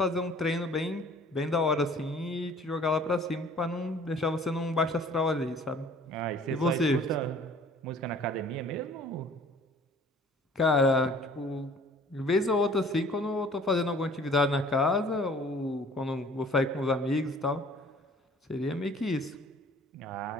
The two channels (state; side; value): normal; both; correlation 0.52